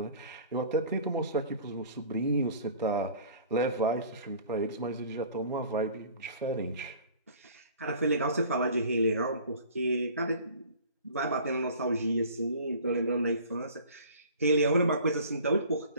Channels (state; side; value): inverted; both; correlation -0.47